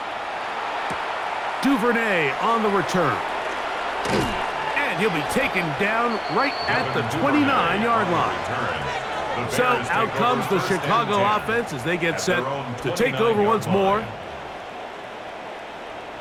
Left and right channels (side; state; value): both; identical; correlation 1.00